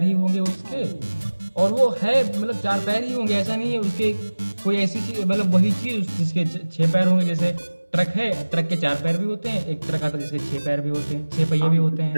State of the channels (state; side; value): inverted; both; correlation -1.00